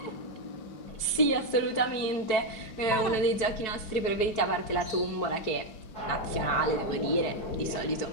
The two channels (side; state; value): right; late; 4.6 ms